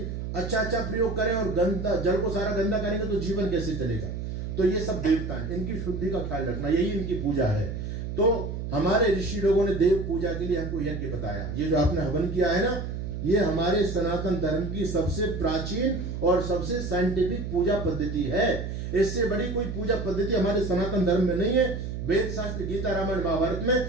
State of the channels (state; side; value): noise; right; hum, 5 dB below the sound